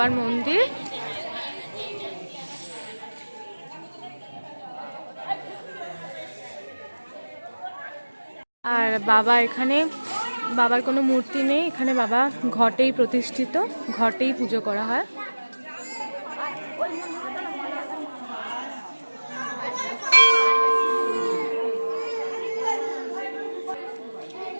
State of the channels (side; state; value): both; inverted; correlation -1.00